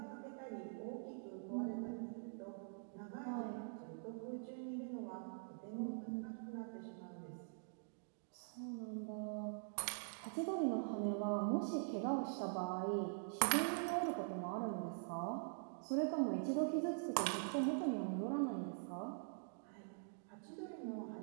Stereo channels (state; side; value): silent; left; digital silence